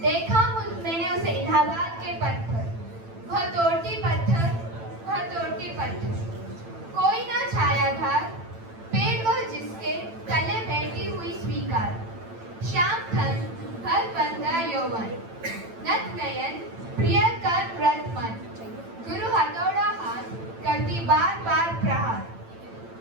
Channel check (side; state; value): left; late; 8.9 ms